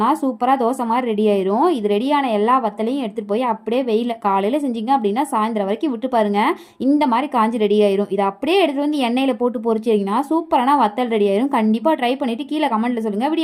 சூப்பராக தோசை மாதிரி ரெடி ஆயிரும். இது ரெடியான எல்லா வத்தலையும் எடுத்துகிட்டு போய் அப்படியே வெயில் காலையில் செஞ்சிங்க அப்படின்னா சாயந்தரம் வரைக்கும் விட்டு பாருங்கள். இந்த மாதிரி காஞ்சி ரெடி ஆயிரும். இதை அப்படியே எடுத்துகிட்டு வந்து எண்ணெயில் போட்டு பொரிச்சிங்கன்னா சூப்பரான வத்தல் ரெடி ஆயிரும். கண்டிப்பாக ட்ரை பண்ணிவிட்டு கீழே கமெண்ட்டில் சொல்லுங்கள்.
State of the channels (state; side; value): identical; both; correlation 1.00